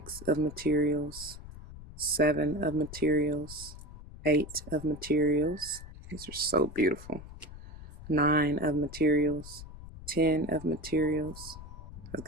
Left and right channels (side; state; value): left; noise; rumble, 14 dB below the sound